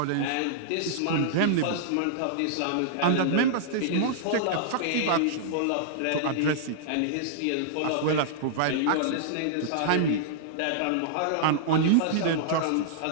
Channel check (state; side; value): different; both; correlation -0.02